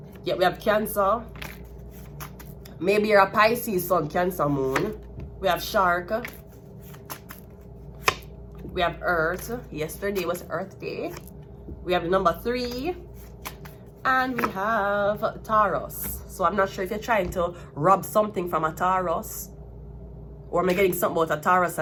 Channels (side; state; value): both; identical; correlation 1.00